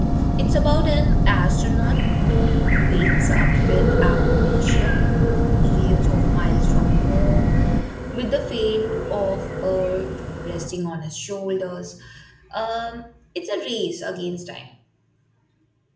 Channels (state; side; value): identical; both; correlation 1.00